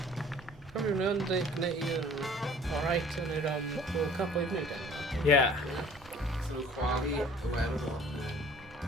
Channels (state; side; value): normal; both; correlation 0.51